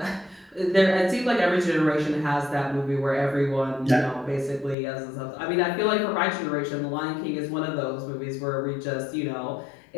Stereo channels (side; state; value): right; drops out; at 4.8 s